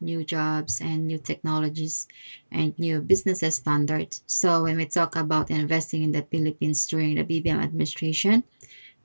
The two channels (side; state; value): both; inverted; correlation -1.00